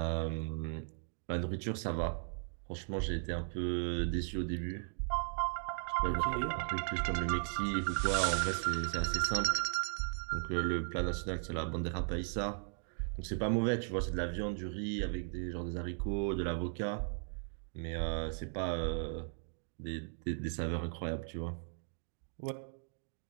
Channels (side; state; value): left; silent; 53 dB below the other